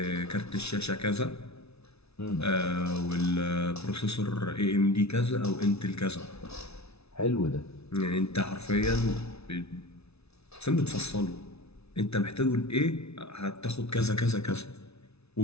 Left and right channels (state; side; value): late; right; 0.80 ms